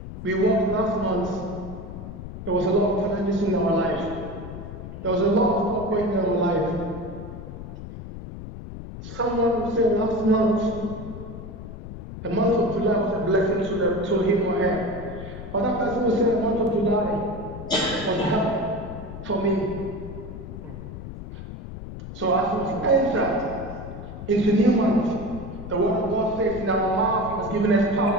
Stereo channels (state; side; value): noise; left; rumble, 11 dB below the sound